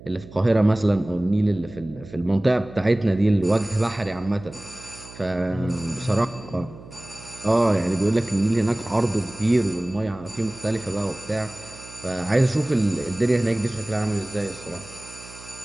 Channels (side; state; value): right; noise; hum, 18 dB below the sound